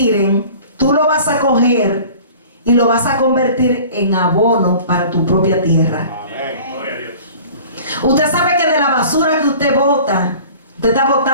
tú lo vas a coger y lo vas a convertir en abono para tu propia tierra. Amén. Usted sabe que de la basura que usted bota, usted está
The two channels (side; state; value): both; inverted; correlation -0.44